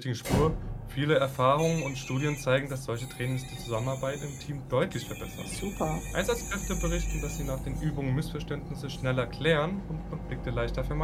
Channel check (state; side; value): identical; both; correlation 1.00